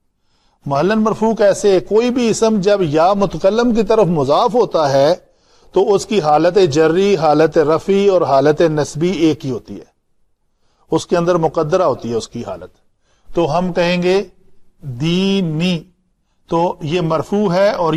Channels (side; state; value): both; identical; correlation 1.00